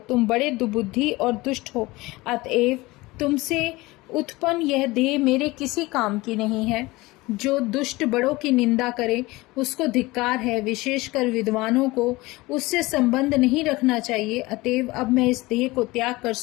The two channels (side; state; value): right; quieter; 21.1 dB